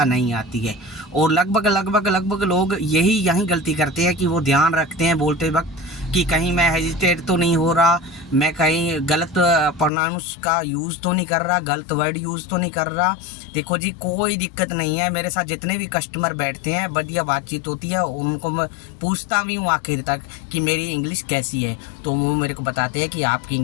नहीं आती है। और लगभग लोग यही गलती करते हैं कि वो ध्यान रखते हैं बोलते वक्त कि कहीं मैं हेजिटेट तो नहीं हो रहा, मैं कहीं गलत प्रोनाउंस का यूज़ तो नहीं कर रहा, गलत वर्ड यूज़ तो नहीं कर रहा। देखो जी, कोई दिक्कत नहीं है। मेरे साथ जितने भी कस्टमर बैठते हैं बढ़िया बातचीत होती है, उनको मैं पूछता भी हूँ आखिर तक कि मेरी इंग्लिश कैसी है, तो वो मेरे को बताते हैं कि आपकी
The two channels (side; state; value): right; drops out; at 9.9 s